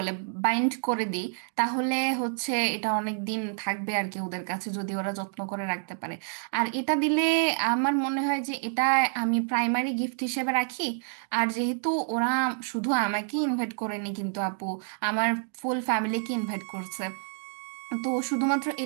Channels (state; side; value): silent; left; digital silence